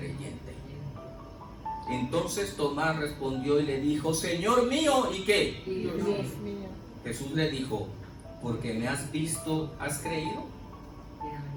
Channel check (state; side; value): identical; both; correlation 1.00